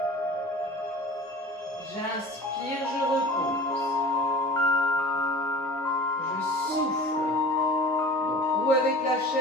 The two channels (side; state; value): both; normal; correlation 0.39